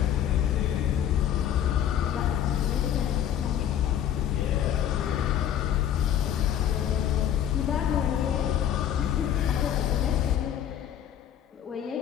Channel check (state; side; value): quieter; right; 10.2 dB